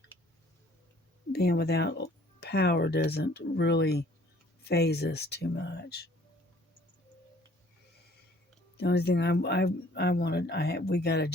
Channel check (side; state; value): both; normal; correlation 0.56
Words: being without power doesn't really phase us too much. The only thing we got a